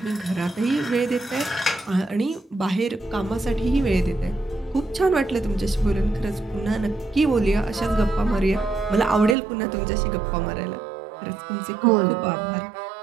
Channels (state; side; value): drops out; left; at 9.3 s